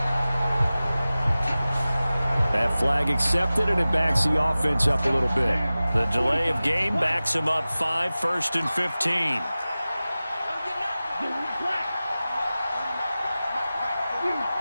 That flag accepted, and it backs the offense up a little bit. The delay of game backs them up 5, 1st and 15.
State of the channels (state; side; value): inverted; both; correlation -0.97